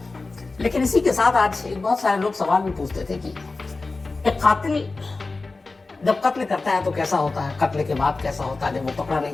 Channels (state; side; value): quieter; right; 3.6 dB